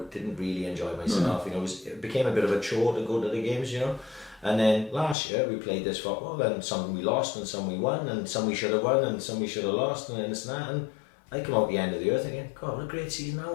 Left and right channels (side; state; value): right; drops out; at 5.2 s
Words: didn't really enjoy myself. You know, it became a bit of a chore to go to the games. You know, and then last year we played this football, and some we lost, and some we won, and some we should have won, and some we should have lost, and this and that. And I come out the end of the earth thinking, God, what a great season that